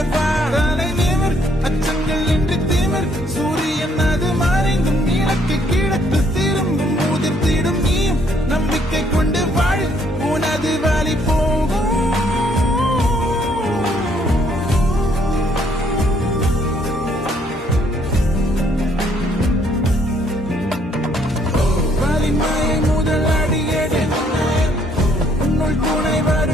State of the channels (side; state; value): both; normal; correlation 0.67